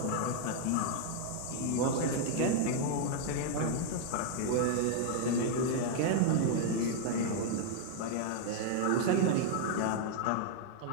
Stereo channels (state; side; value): different; both; correlation 0.00